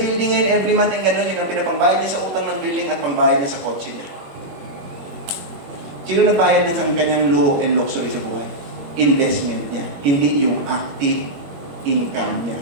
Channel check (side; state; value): left; late; 21 ms